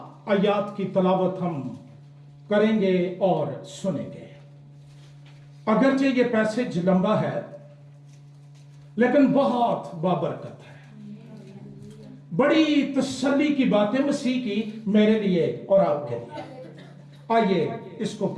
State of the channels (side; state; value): both; identical; correlation 1.00